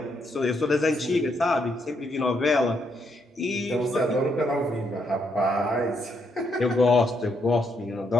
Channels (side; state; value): both; normal; correlation 0.76